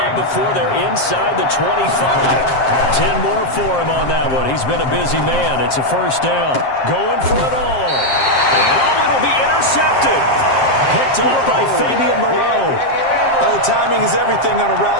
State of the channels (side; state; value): right; late; 7.5 ms